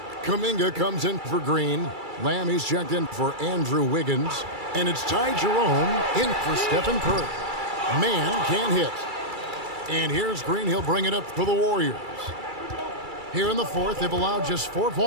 Kuminga comes in for Green. Lamb, he's checked in for Andrew Wiggins. And it's Ty Jerome in for Stephen Curry. Mann can't hit. And here's Green. He'll bring it up for the Warriors. Here in the fourth, they've allowed just 4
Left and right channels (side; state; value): left; late; 2.3 ms